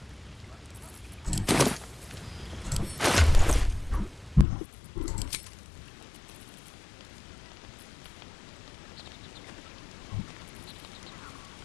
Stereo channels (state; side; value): drops out; right; at 4.5 s